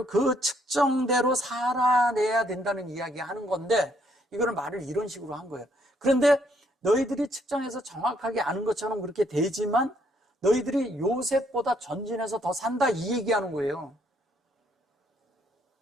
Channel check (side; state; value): both; normal; correlation 0.69